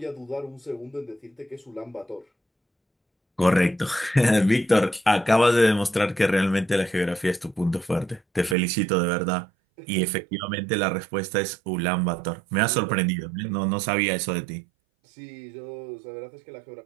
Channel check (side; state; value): left; drops out; at 8.6 s